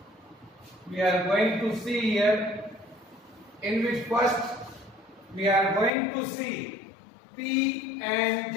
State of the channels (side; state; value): right; drops out; at 5.9 s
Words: We are going to see here, in which first we are going to see P-N